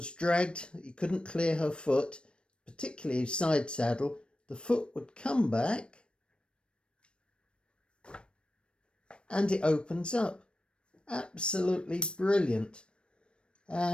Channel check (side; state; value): right; late; 0.057 ms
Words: dragged, you couldn't clear her foot, particularly side saddle, the foot would come back and it opens up. Absolutely brilliant.